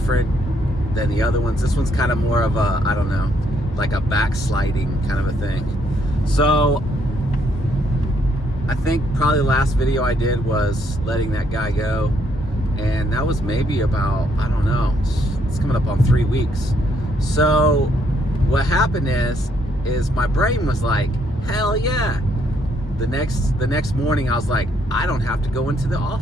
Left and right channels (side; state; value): both; normal; correlation 0.71